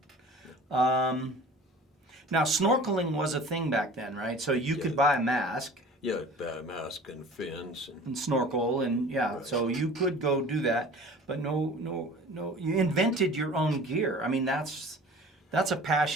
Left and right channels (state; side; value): normal; both; correlation 0.43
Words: Now, snorkeling was a thing back then, right? So you could buy a mask Yeah, a mask and fins. and snorkel, and yeah, Right. so you could go do that. But no, you invented your own gear. I mean, that's a